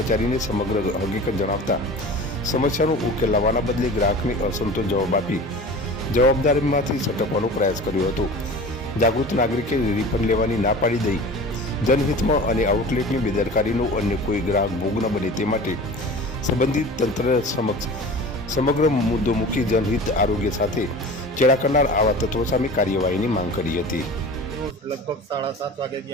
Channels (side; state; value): both; normal; correlation 0.38